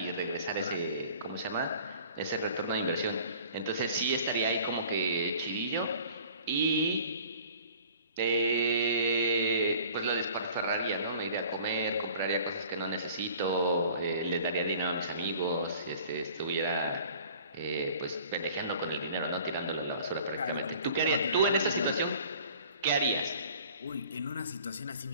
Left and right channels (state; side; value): inverted; both; correlation -0.49